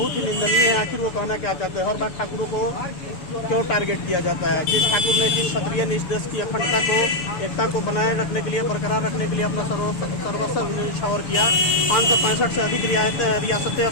ही निंदनीय है। आखिर वो कहना क्या चाहते हैं? हर बार ठाकुरों को क्यों टारगेट किया जाता है? जिस ठाकुर ने, जिस क्षत्रिय ने इस देश की अखंडता को, एकता को बनाए रखने के लिए, बरकरार रखने के लिए अपना सर्वस्व न्यौछावर किया, 565 से अधिक रियासतें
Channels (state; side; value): late; right; 6.9 ms